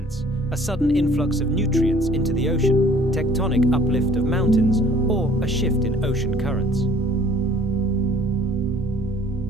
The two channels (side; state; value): both; normal; correlation 0.54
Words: a sudden influx of nutrients into the ocean, tectonic uplift of mountains, or a shift in ocean currents.